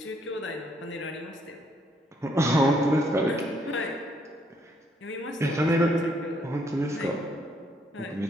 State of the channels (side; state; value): both; normal; correlation 0.70